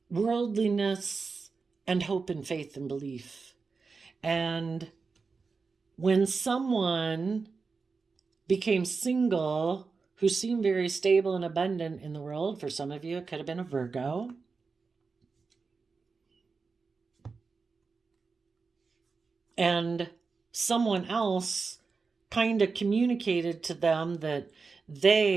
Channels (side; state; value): left; quieter; 4.6 dB